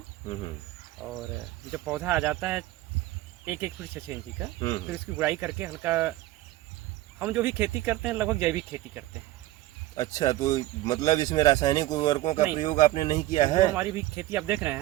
और जब पौधा आ जाता है 1-1 फीट 6 इंची का, फिर उसकी गुड़ाई करके हल्का, हम जो भी खेती करते हैं लगभग जैविक खेती करते हैं। अच्छा, तो मतलब इसमें रासायनिक उर्वरकों का प्रयोग आपने नहीं किया है? तो हमारी भी खेती आप देख रहे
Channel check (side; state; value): left; quieter; 16.4 dB